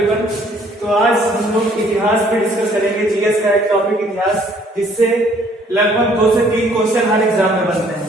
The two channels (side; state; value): both; normal; correlation 0.61